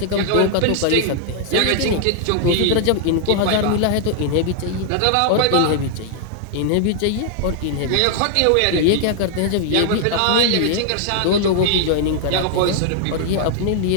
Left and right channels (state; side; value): different; both; correlation -0.01